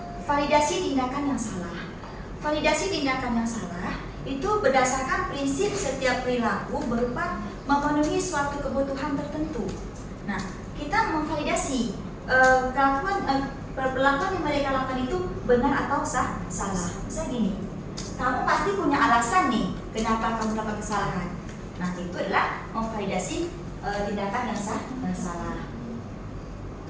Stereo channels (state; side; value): identical; both; correlation 1.00